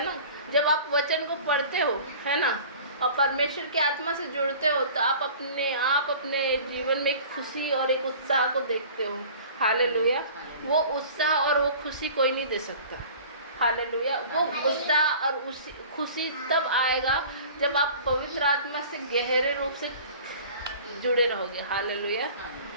ना। जब आप वचन को पढ़ते हो, है ना, और परमेश्वर की आत्मा से जुड़ते हो, तो आप अपने जीवन में एक खुशी और एक उत्साह को देखते हो। हालेलुया। वो उत्साह और वो खुशी कोई नहीं दे सकता। हालेलुया। वो उत्साह और खुशी तब आएगा जब आप पवित्र आत्मा से गहरे रूप से जुड़े रहोगे। हालेलुया।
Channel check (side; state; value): both; inverted; correlation -0.43